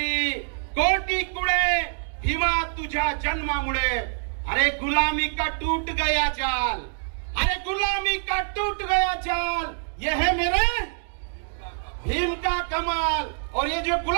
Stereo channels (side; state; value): left; silent; digital silence